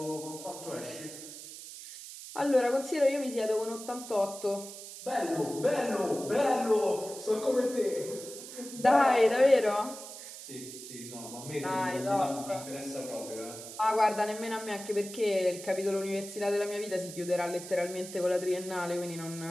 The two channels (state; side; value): noise; right; hiss, 12 dB below the sound